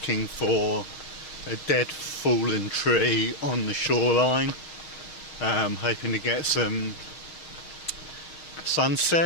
for a dead fallen tree on the shoreline, hoping to get some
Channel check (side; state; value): right; late; 6.4 ms